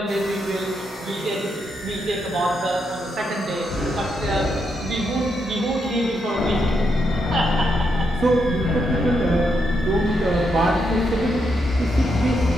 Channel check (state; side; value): normal; both; correlation 0.81